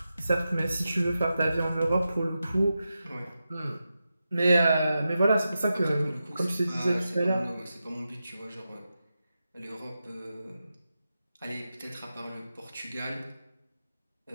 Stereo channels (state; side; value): inverted; both; correlation -0.91